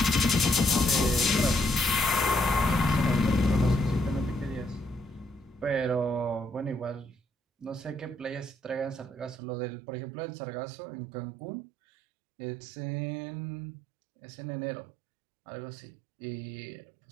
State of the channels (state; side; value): drops out; left; at 9.4 s